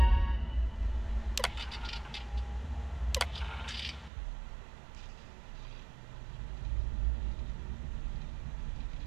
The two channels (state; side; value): drops out; left; at 4.1 s